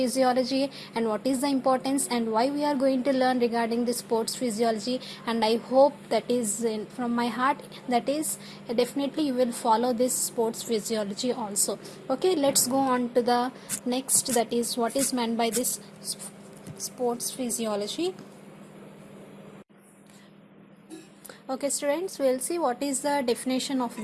and what is the importance and why we are going to learn regarding the sports physiology. And I hope that is from my heart, that is definitely you will follow this sports physiology also. Okay, let's go on to the next, that is what is meant by this sports physiology. Okay students, we'll see what is the definition of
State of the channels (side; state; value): both; identical; correlation 1.00